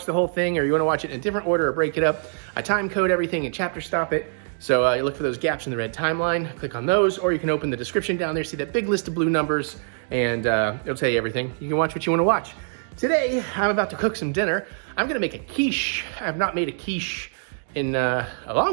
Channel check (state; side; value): silent; left; digital silence